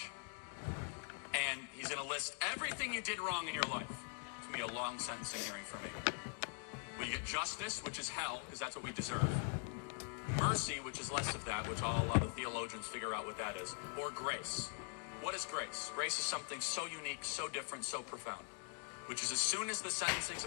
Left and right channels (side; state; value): right; quieter; 39.0 dB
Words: and he's going to list everything you did wrong in your life. It's going to be a long sentencing hearing for me. Will you get justice, which is hell, because that's what we deserve. Mercy, which is less of that, which I'll allow the theologians figure out what that is. Or grace. What is grace? Grace is something so unique, so different, so profound. Which is as soon as the sentencing's